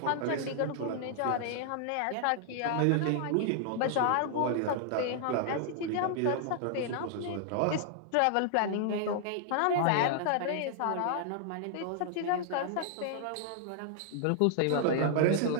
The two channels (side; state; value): both; different; correlation -0.01